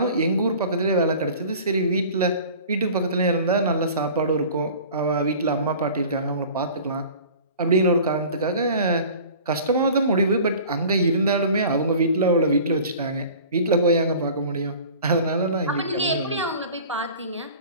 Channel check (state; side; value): inverted; both; correlation -0.43